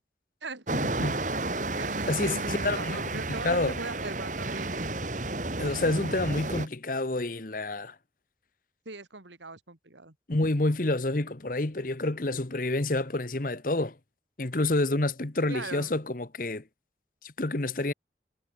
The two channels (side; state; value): both; normal; correlation 0.36